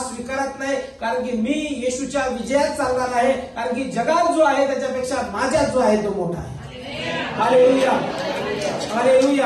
स्वीकारत नाही. कारण की मी येशूच्या विजयात चालणार आहे. कारण की जगात जो आहे त्याच्यापेक्षा माझ्यात जो आहे तो मोठा आहे. Hallelujah,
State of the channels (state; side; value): identical; both; correlation 1.00